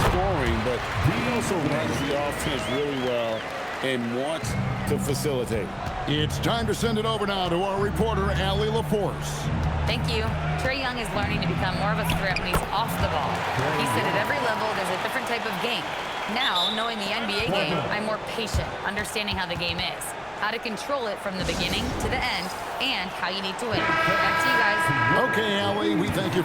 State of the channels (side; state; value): both; identical; correlation 1.00